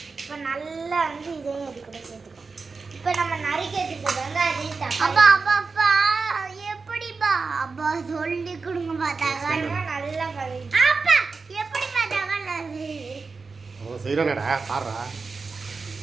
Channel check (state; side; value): quieter; left; 4.4 dB